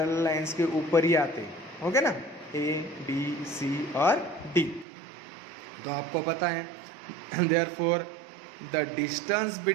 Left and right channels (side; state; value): left; drops out; at 4.9 s